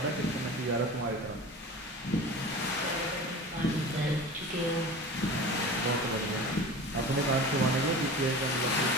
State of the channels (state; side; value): normal; both; correlation 0.35